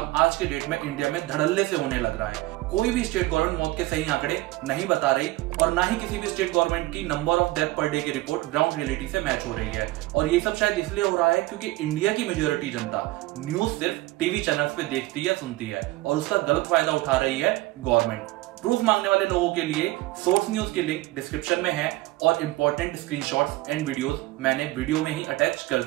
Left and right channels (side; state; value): left; quieter; 18.9 dB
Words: आज के डेट में इंडिया में धड़ल्ले से होने लग रहा है। कोई भी स्टेट गवर्नमेंट मौत के सही आंकड़े नहीं बता रही और ना ही किसी भी स्टेट गवर्नमेंट की number of death per day की रिपोर्ट ग्राउंड रियलिटी से मैच हो रही है। और ये सब शायद इसलिए हो रहा है क्योंकि इंडिया की मेजोरिटी जनता न्यूज सिर्फ टीवी चैनल्स पे देखती है, सुनती है और उसका गलत फायदा उठा रही है गवर्नमेंट। प्रूफ मांगने वाले लोगों के लिए सोर्स न्यूज की लिंक डिस्क्रिप्शन में है और इंपॉर्टेंट स्क्रीनशॉट्स एंड वीडियोस मैंने वीडियो में ही अटैच कर